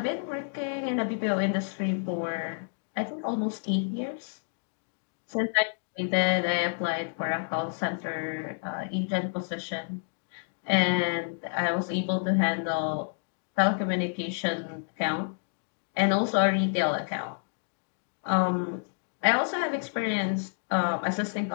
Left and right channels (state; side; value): silent; right; digital silence